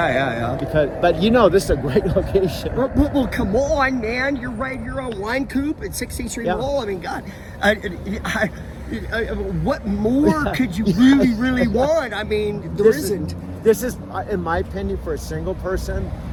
But this is a great location. Well, come on, man. You're right. You're on Wine Coop at 16th Street Mall. I mean, God, what more could you really want? I mean, there isn't. This is, in my opinion, for a single person.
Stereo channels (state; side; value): identical; both; correlation 1.00